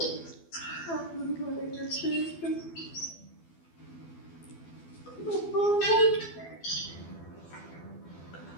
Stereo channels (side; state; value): right; late; 12 ms